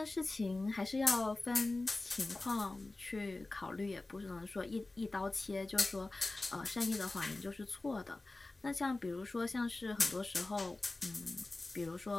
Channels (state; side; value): quieter; right; 3.1 dB